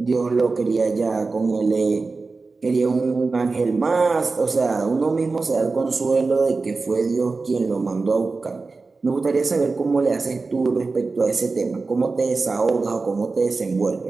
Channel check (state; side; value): quieter; left; 4.0 dB